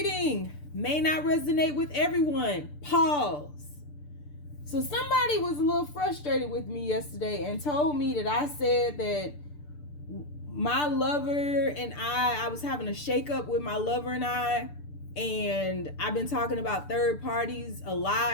May not resonate with everyone. Pause. So somebody was a little frustrated with me yesterday and told me that I said that my lover and I was having a shakeup with my lover and I've been talking about third parties a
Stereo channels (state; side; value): late; right; 6.8 ms